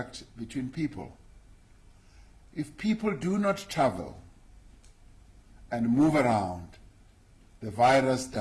between people. If people do not travel and move around, the virus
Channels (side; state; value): both; identical; correlation 1.00